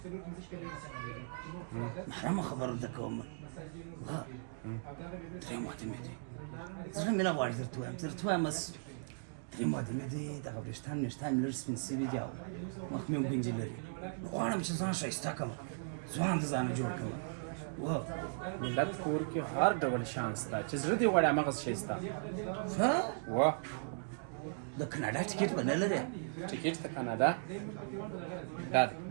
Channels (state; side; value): silent; left; digital silence